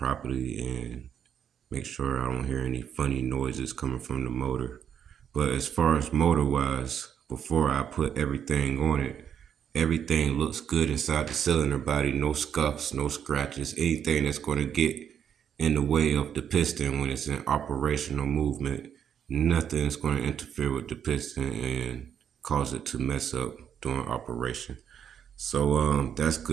and make sure I don't hear any funny noises coming from the motor. But as far as motor wise, before I put everything on it, everything looks good inside the cylinder body. No scuffs, no scratches, anything that's going to get in the way of the piston when it's in operational movement. Nothing's going to interfere with the piston and cause it to mess up during operation. So that's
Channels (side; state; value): left; quieter; 8.6 dB